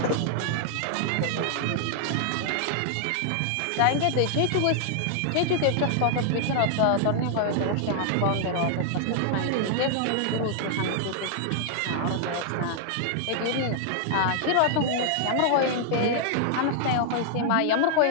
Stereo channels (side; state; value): both; different; correlation -0.01